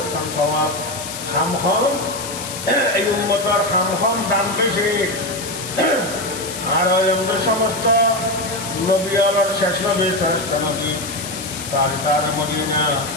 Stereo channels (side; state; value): left; noise; hiss, 9 dB below the sound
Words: খান স্বভাব খাম খাম এই উম্মতার খাম খাম দাম পেয়েছে আর আমাদের সমস্ত নবী আলার শেষ নবী শ্রেষ্ঠ নবী তার মদিনা